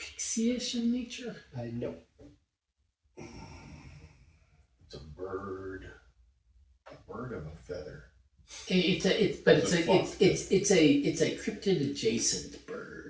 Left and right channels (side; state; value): both; identical; correlation 1.00